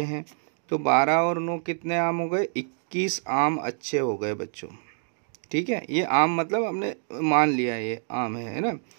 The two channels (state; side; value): silent; left; digital silence